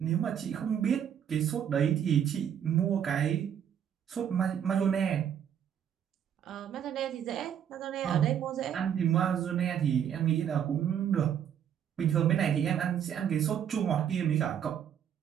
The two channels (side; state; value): left; quieter; 9.1 dB